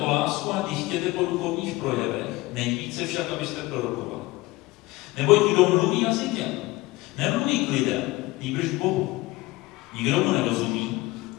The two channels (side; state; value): right; quieter; 20.1 dB